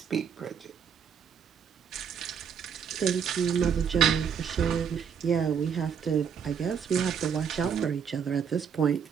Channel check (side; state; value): left; quieter; 7.3 dB